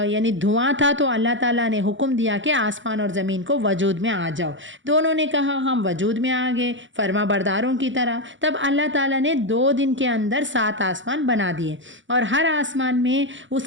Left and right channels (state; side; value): late; left; 0.55 ms